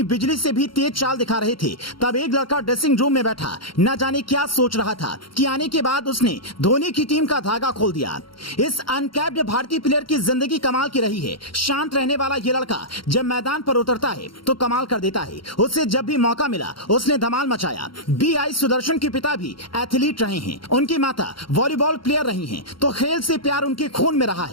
बिजली से भी तेज चाल दिखा रहे थे, तब एक लड़का ड्रेसिंग रूम में बैठा न जाने क्या सोच रहा था कि आने के बाद उसने धोनी की टीम का धागा खोल दिया। इस अनकैप्ड भारतीय प्लेयर की जिंदगी कमाल की रही है। शांत रहने वाला ये लड़का जब मैदान पर उतरता है तो कमाल कर देता है। उसे जब भी मौका मिला उसने धमाल मचाया। BI सुदर्शन के पिता भी एथलीट रहे हैं, उनकी माता वॉलीबॉल प्लेयर रही हैं, तो खेल से प्यार उनके खून में रहा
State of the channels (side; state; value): right; late; 0.73 ms